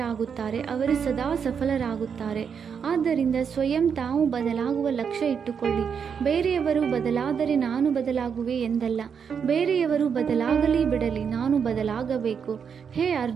ಅವರು ಸದಾ ಸಫಲರಾಗುತ್ತಾರೆ. ಆದ್ದರಿಂದ ಸ್ವಯಂ ತಾವು ಬದಲಾಗುವ ಲಕ್ಷ್ಯ ಇಟ್ಟುಕೊಳ್ಳಿ. ಬೇರೆಯವರು ಬದಲಾದರೆ ನಾನು ಬದಲಾಗುವೆ ಎಂದಲ್ಲ. ಬೇರೆಯವರು ಬದಲಾಗಲಿ ಬಿಡಲಿ, ನಾನು ಬದಲಾಗಬೇಕು. ಹೇ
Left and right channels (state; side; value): quieter; left; 6.9 dB